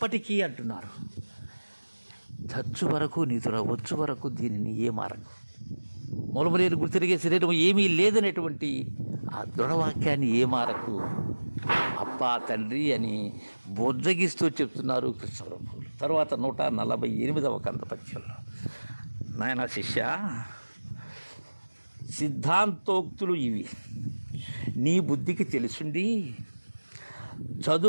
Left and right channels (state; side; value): inverted; both; correlation -1.00